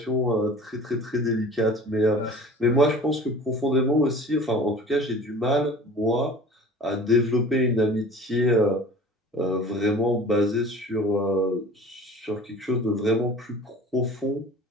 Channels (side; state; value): both; normal; correlation 0.43